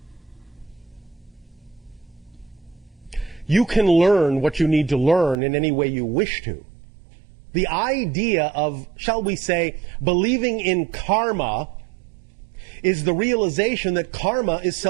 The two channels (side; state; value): left; drops out; at 5.4 s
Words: You can learn what you need to learn in any way you wish to. The idea of, shall we say, believing in karma is the realization that karma is